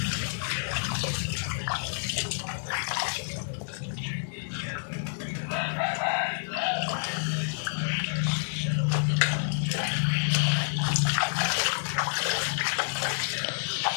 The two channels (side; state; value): right; silent; digital silence